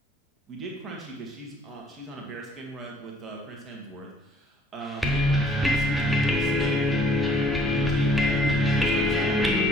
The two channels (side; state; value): both; normal; correlation 0.58